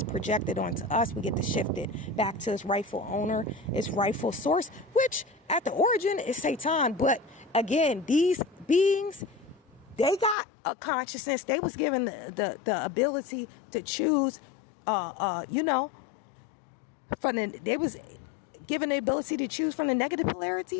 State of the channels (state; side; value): drops out; right; at 10.4 s